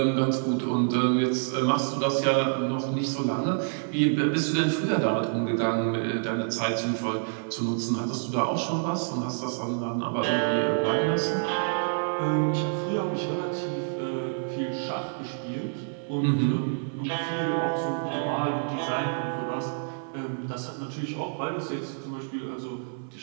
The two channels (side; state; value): left; silent; 60 dB below the other